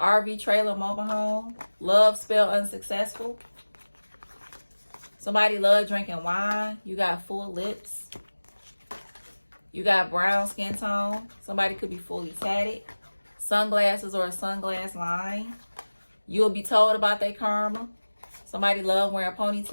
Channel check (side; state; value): both; inverted; correlation -1.00